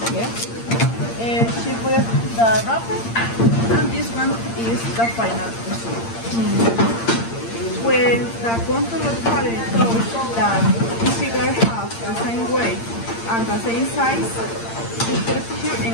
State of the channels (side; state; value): right; late; 8.7 ms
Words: Yeah. She put it the wrapper, and this one is the final result. When the control party shows that the cigar has the same weight and the same size, we put it here in